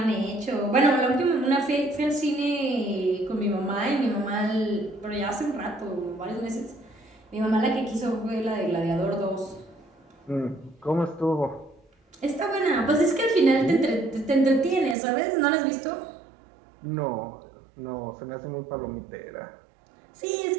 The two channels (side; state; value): left; drops out; at 15.0 s